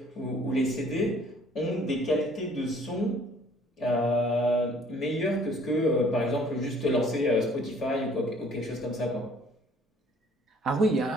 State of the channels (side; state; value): both; normal; correlation 0.57